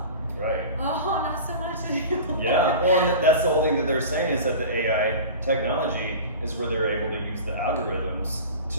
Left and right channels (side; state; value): both; inverted; correlation -0.35